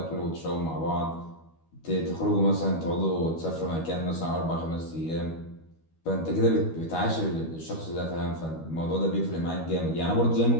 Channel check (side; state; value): right; late; 12 ms